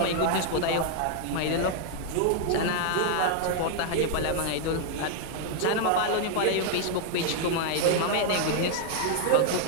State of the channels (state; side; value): different; both; correlation 0.00